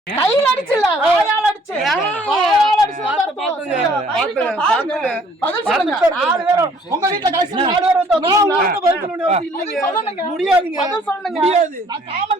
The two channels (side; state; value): both; normal; correlation 0.59